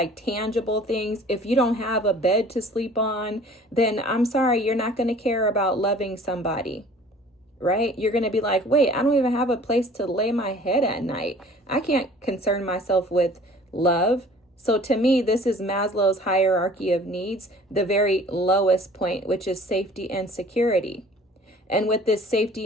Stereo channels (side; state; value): both; normal; correlation 0.49